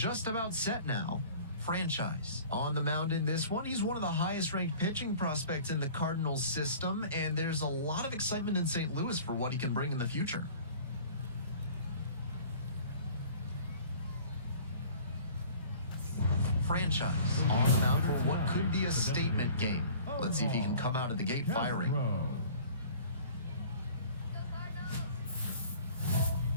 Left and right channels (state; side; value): inverted; both; correlation -0.47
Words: about set now. Franchise on the mound in this one. He's one of the highest ranked pitching prospects in the Cardinals system, and there's a lot of excitement in St. Louis for what he can bring in the future. Franchise on the mound for what could be a statement game. Let's see if he can come out of the gate firing. Castro.